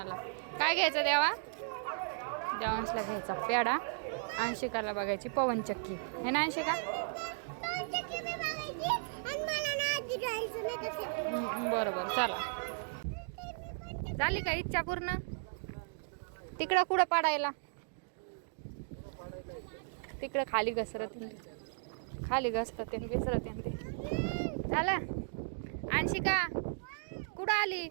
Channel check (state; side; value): silent; left; digital silence